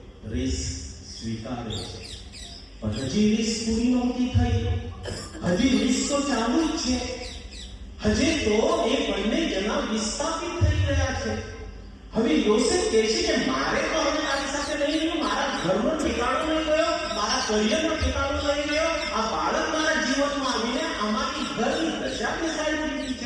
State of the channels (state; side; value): identical; both; correlation 1.00